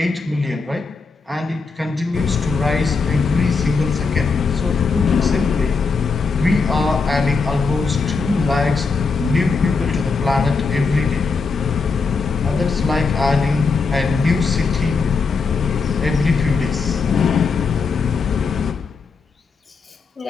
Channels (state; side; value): quieter; right; 4.6 dB